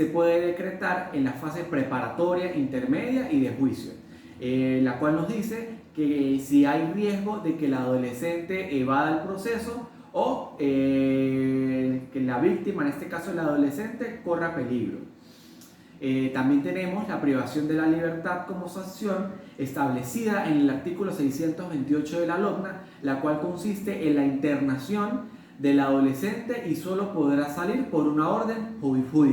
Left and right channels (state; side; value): identical; both; correlation 1.00